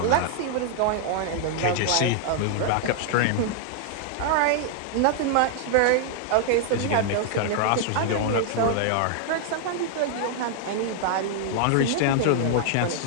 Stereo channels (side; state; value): both; different; correlation 0.00